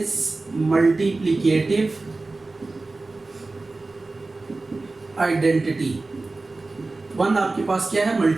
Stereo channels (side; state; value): left; quieter; 3.4 dB